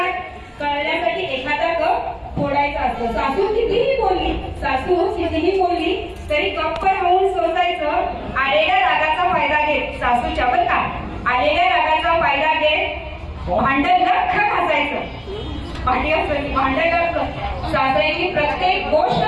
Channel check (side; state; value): both; identical; correlation 1.00